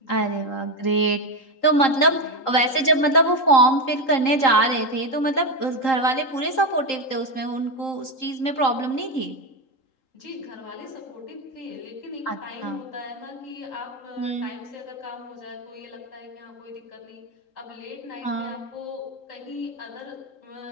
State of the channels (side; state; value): right; late; 3.8 ms